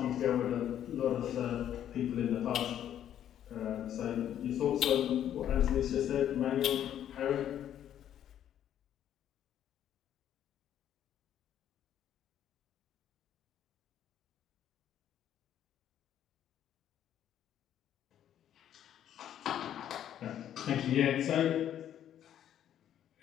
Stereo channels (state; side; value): quieter; right; 10.6 dB